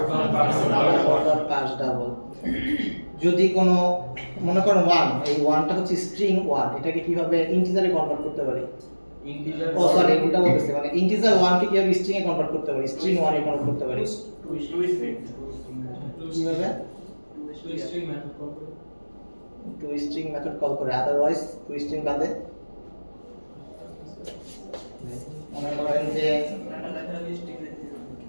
পার্স ডাবল। যদি কোনো মনে করেন 1, এই 1 টা হচ্ছে স্ট্রিং 1, এটাকে কিভাবে ইন্টিজারে কনভার্ট করতে পারি? ইন্টিজার সরি এটা বলতেছি, মানে ইন্টিজার 1 কে কিভাবে স্ট্রিং এ কনভার্ট করতে পারি? স্ট্রিং 1 এ কনভার্ট করতে পারি কিভাবে? টু স্ট্রিং মেথড কল করে, আদারওয়াইজ টু স্ট্রিং বাদে মনে করেন যে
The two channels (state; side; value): inverted; both; correlation -1.00